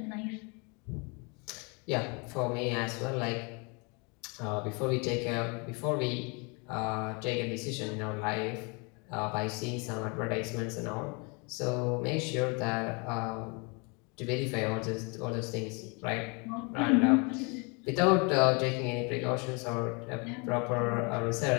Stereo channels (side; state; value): right; quieter; 31.7 dB